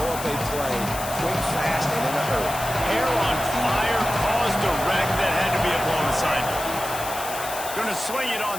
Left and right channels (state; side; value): noise; left; hiss, 9 dB below the sound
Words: up a play quick, fast, and in a hurry. Hair on fire caused a wreck that had to be a blown assignment. Going to swing it